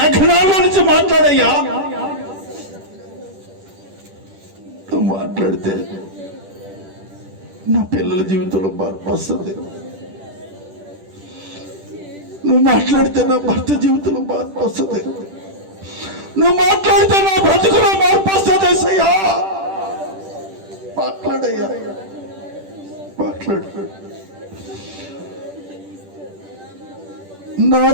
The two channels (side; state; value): left; late; 10 ms